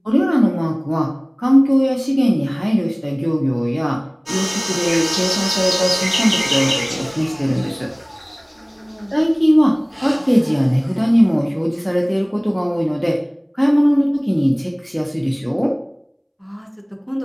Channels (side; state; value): both; identical; correlation 1.00